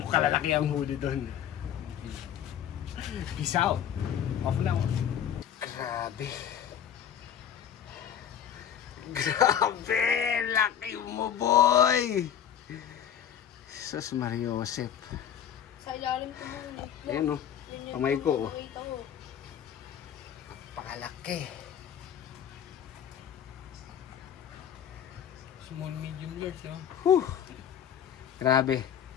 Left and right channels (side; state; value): right; quieter; 9.4 dB